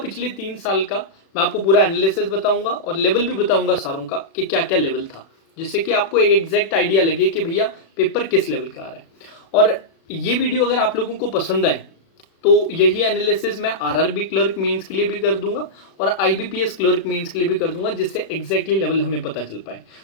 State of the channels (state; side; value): late; right; 36 ms